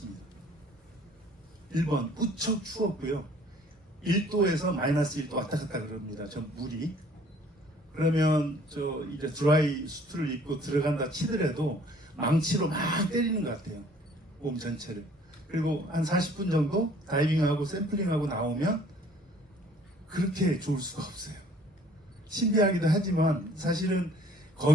1번 무척 추웠고요. 1도에서 마이너스 1도 왔다 갔다 그럽니다. 저 물이. 그러면 저 이제 드라이 수트를 입고 들어간다 치더라도 망치로 막 때리는 것 같아요. 몸 전체를. 그리고 한 40분 정도 다이빙하고 샘플링하고 나오면 그렇게 좋을 수가 없어요. 신비하기도 하지만 사실은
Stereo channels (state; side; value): normal; both; correlation 0.56